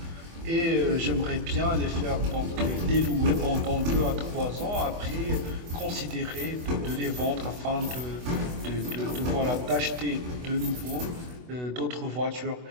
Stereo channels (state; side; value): late; left; 24 ms